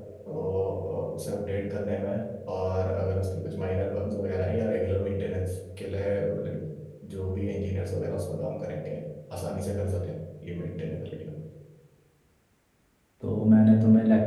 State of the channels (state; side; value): identical; both; correlation 1.00